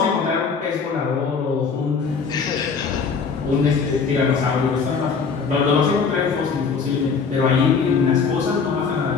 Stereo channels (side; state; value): right; quieter; 5.4 dB